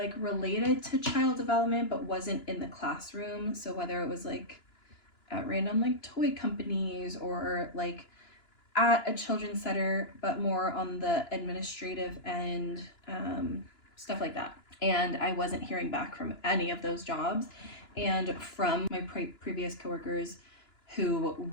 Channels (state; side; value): late; right; 2.9 ms